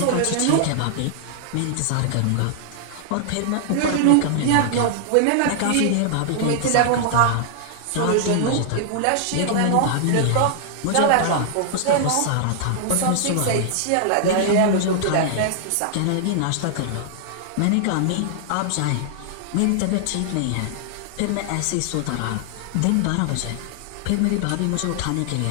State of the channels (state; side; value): different; both; correlation -0.01